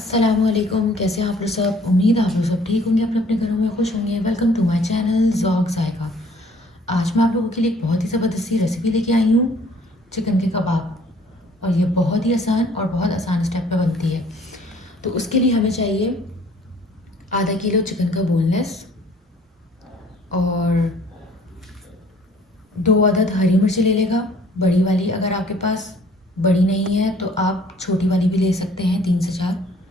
कैसे हैं आप लोग सब? उम्मीद है आप लोग सब ठीक होंगे, अपने अपने घरों में खुश होंगे। Welcome to my channel Zauq Zaika. आज मैं आप लोगों के लिए एक बहुत ही ज़बरदस्ती रेसिपी लेके आई हूँ, चिकन के कबाब। और ये बहुत ही आसान और बहुत आसान स्टेप पे बनती है। तो उसके लिए हमें चाहिए आधा किलो चिकन का बोनलेस और 2 अदद हरी मिर्च ले लेगा, बड़ी वाली। अगर आपके पास बड़ी नहीं है तो आप छोटी वाली भी ले सकते हैं, 3 से 4।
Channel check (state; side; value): normal; both; correlation 0.56